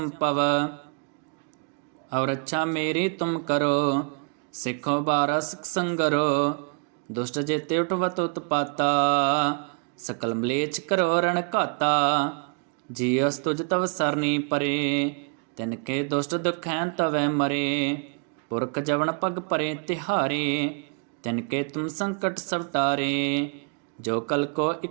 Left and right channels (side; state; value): left; quieter; 38.1 dB